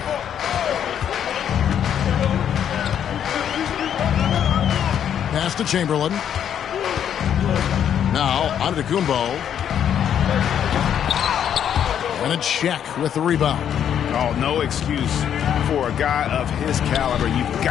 Pass to Chamberlain. Now, Antetokounmpo. And it's Shaq with the rebound. Oh, no excuse for a guy of his caliber. You've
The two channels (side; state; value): right; quieter; 9.2 dB